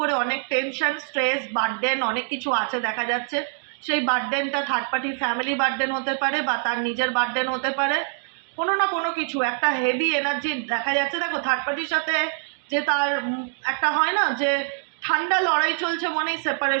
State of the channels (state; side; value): silent; left; 62 dB below the other